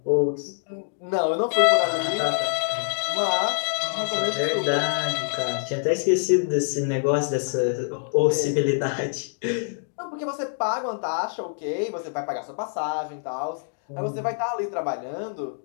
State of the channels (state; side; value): silent; right; digital silence